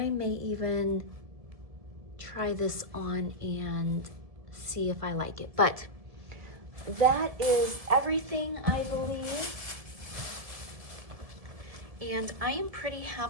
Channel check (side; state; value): left; late; 1.7 ms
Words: may even try this on and see if I like it. But that is everything, I believe. And I am pretty